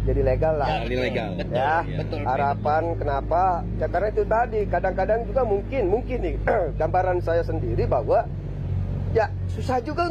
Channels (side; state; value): both; identical; correlation 1.00